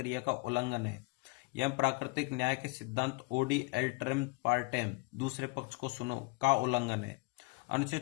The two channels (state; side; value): quieter; right; 26.4 dB